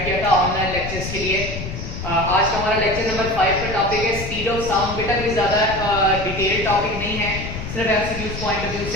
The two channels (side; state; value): left; noise; rumble, 7 dB below the sound